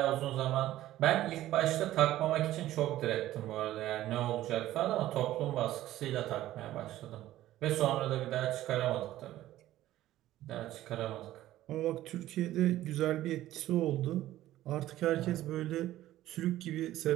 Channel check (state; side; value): quieter; left; 14.4 dB